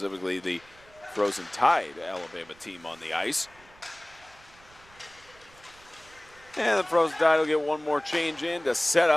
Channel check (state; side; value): noise; right; rumble, 26 dB below the sound